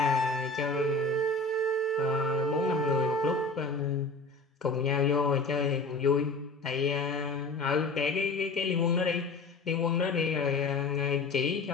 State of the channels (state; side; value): quieter; right; 3.2 dB